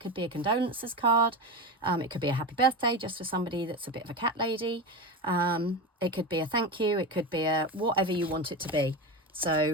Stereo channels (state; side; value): normal; both; correlation 0.21